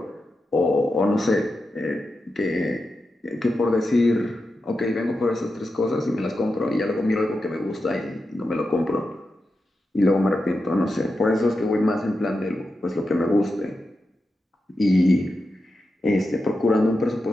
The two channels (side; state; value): both; normal; correlation 0.89